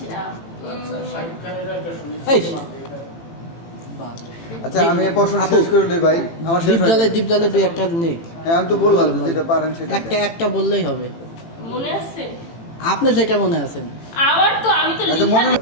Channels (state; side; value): late; right; 18 ms